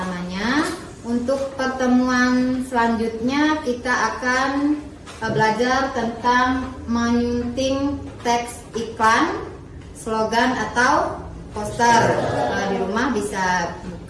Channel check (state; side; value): identical; both; correlation 1.00